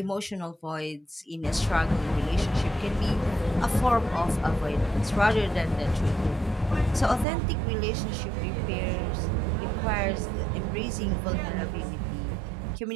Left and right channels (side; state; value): left; drops out; at 7.2 s